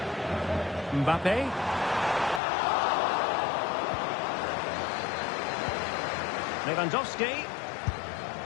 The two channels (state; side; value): drops out; right; at 2.4 s